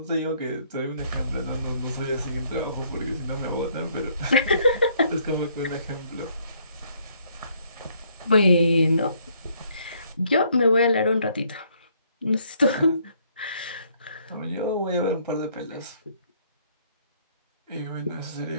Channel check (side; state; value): both; inverted; correlation -0.66